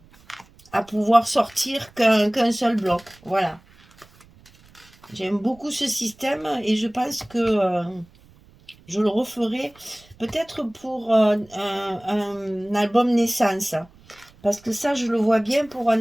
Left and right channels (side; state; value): right; noise; rumble, 27 dB below the sound